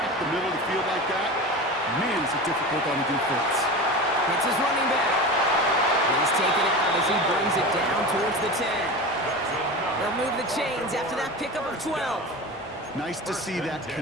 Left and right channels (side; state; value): both; normal; correlation 0.29